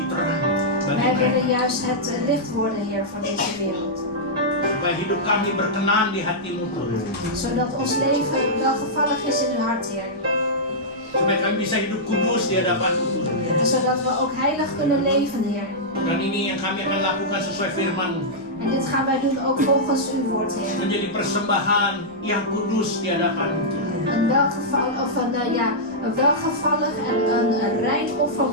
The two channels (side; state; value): left; noise; rumble, 28 dB below the sound